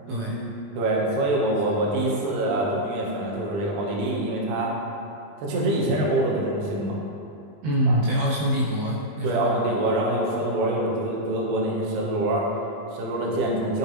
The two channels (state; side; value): late; left; 20 ms